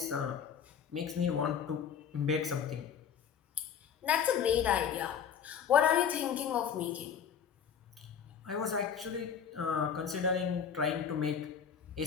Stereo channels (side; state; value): right; quieter; 7.7 dB